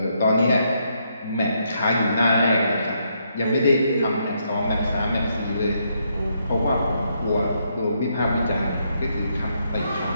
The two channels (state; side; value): inverted; both; correlation -0.76